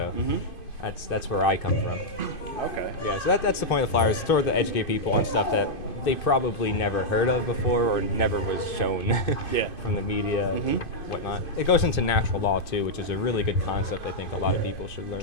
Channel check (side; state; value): right; late; 2.5 ms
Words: that's where I come from. Okay. Yeah. So that's the point of the flyers. It's to educate people on stuff that they probably never heard of before or never was shown from the media and whatnot. It goes into natural law too, which is a really good concept I think a lot of people should learn.